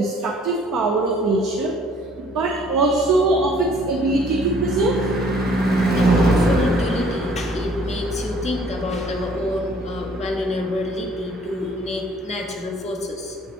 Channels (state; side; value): normal; both; correlation 0.58